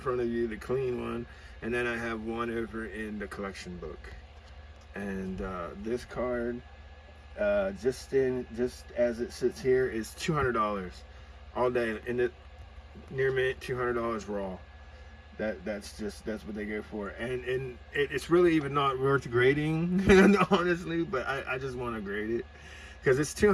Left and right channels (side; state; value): both; identical; correlation 1.00